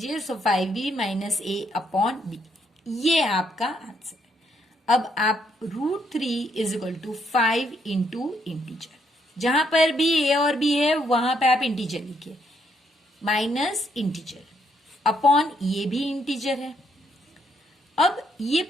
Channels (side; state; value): both; normal; correlation 0.74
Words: so 5b minus a upon B, ये आपका आंसर। अब आप √3 is equal to 5 into integer, जहां पर भी a और b है वहां पे आप इंटीजर लिखिए, माइनस इंटीजर अपॉन ये भी इंटीजर है। अब ये